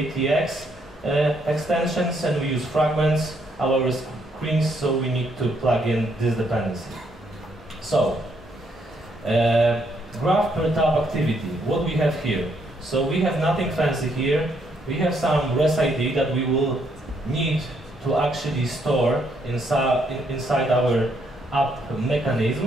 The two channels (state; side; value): normal; both; correlation 0.72